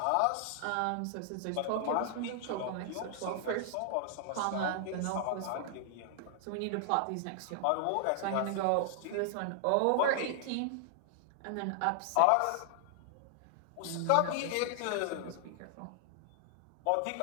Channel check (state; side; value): different; both; correlation 0.00